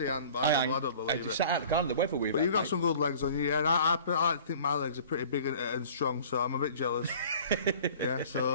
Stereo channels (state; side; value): inverted; both; correlation -0.47